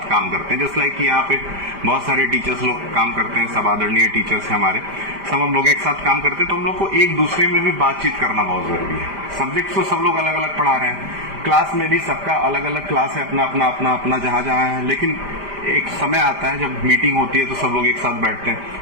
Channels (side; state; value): left; late; 5.0 ms